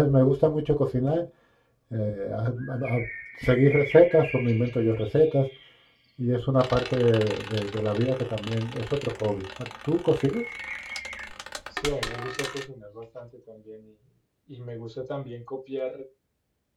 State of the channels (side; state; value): both; identical; correlation 1.00